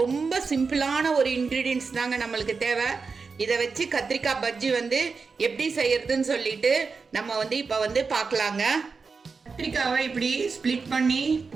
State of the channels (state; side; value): quieter; left; 4.8 dB